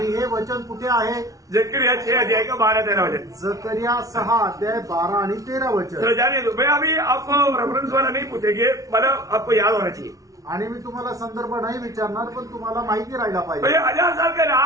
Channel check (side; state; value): left; late; 0.17 ms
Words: हे वचन कुठे आहे? जकरिया 6 अध्याय का 12-13 वचन। जकरिया 6 अध्याय 12 आणि 13 वचन। चलो जाने दो, मैं अभी आपको रेफरेंस वाला नहीं पूछेंगे, मतलब आपको याद होना चाहिए। आणि मी तुम्हाला संदर्भ नाही विचारणार, पण तुम्हाला माहिती राहायला तो पाहिजे। ये 1000 साल का